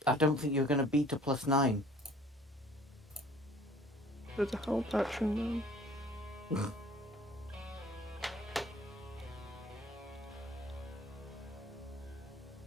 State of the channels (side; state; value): both; normal; correlation 0.53